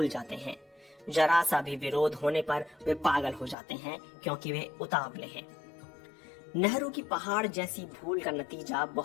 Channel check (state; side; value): drops out; right; at 3.6 s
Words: जाते हैं। जरा सा भी विरोध होने पर वे पागल हो जाते हैं, क्योंकि वे उतावले हैं। नेहरू की पहाड़ जैसी भूल का नतीजा